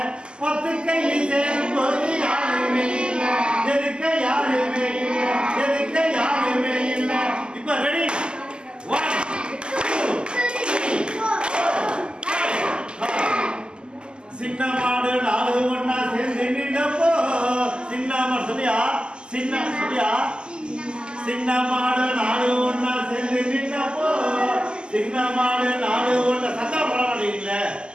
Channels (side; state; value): left; late; 0.048 ms